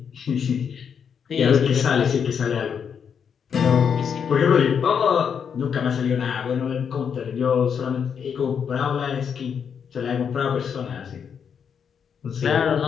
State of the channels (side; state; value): right; quieter; 7.2 dB